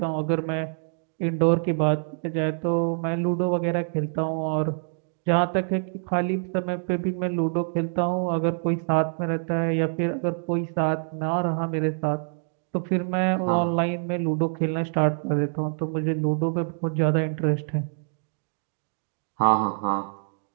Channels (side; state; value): left; silent; 61 dB below the other